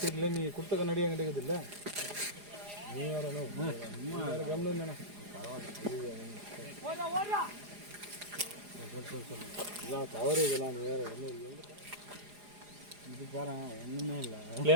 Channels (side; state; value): left; late; 4.9 ms